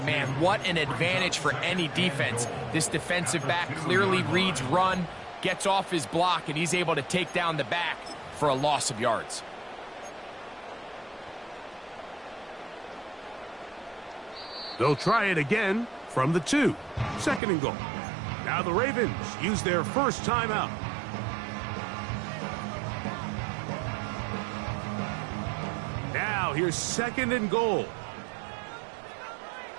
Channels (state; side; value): drops out; left; at 17.4 s